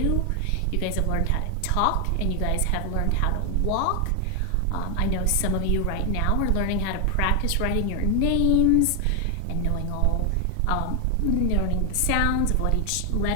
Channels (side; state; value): both; different; correlation 0.00